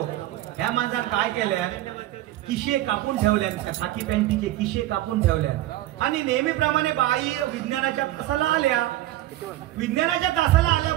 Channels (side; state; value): left; quieter; 15.1 dB